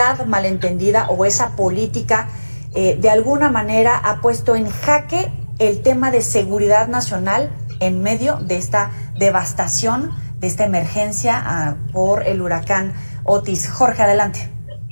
malentendida o esa política de alguna manera ha puesto en jaque el tema de seguridad nacional en medio de esta devastación, de esta emergencia por el huracán Otis. Jorge, adelante.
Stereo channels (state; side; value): inverted; both; correlation -1.00